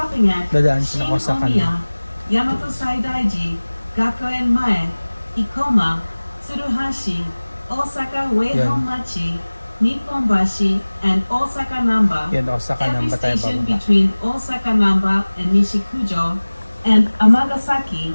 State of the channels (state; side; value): inverted; both; correlation -1.00